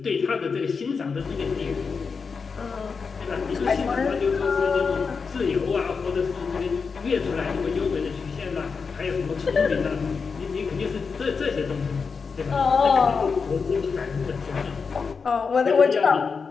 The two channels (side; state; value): right; quieter; 5.2 dB